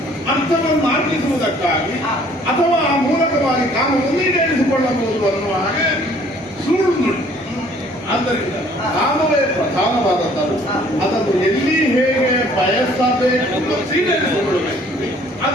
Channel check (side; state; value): both; normal; correlation 0.57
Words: ಅರ್ಥವನ್ನು ಅರ್ಪಿಸುವುದಕ್ಕಾಗಿ ಅಥವಾ ಆ ಮೂಲಕವಾಗಿ ಕಾಮವನ್ನು ಈಡೇರಿಸಿಕೊಳ್ಳಬಹುದು ಅನ್ನುವ ಹಾಗೆ ಸುಳ್ಳು ನುಡಿ. ಆದ್ದರಿಂದ ಕಾಮವೇ ಪ್ರಧಾನವಾದದ್ದು. ಅದನ್ನು ಎಲ್ಲಿ ಹೇಗೆ ಬಯಸಬೇಕು ಈಡೇರಿಸಿಕೊಳ್ಳಬೇಕು